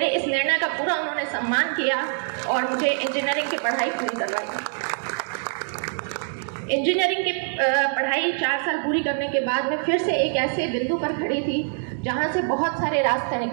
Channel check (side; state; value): left; silent; 62 dB below the other